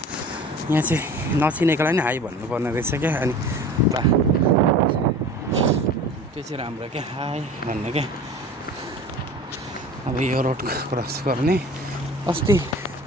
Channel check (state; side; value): normal; both; correlation 0.40